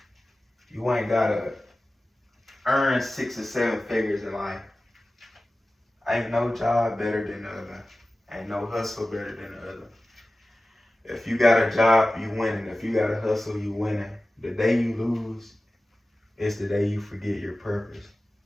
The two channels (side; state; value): both; normal; correlation 0.96